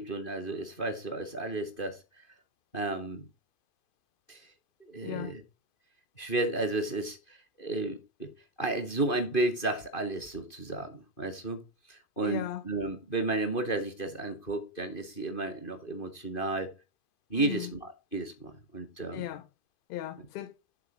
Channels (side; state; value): right; late; 2.5 ms